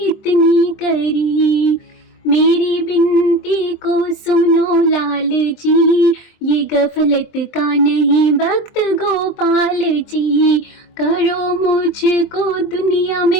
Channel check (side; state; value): right; late; 23 ms